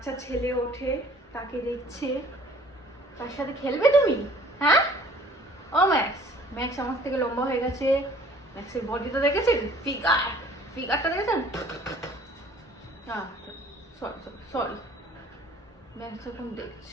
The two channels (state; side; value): normal; both; correlation 0.54